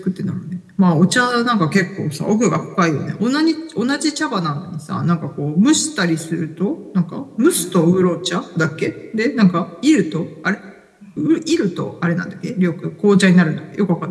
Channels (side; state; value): both; identical; correlation 1.00